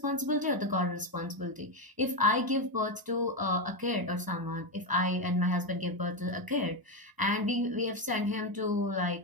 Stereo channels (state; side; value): late; left; 1.0 ms